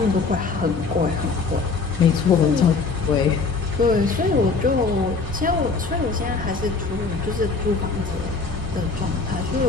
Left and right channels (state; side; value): quieter; right; 4.3 dB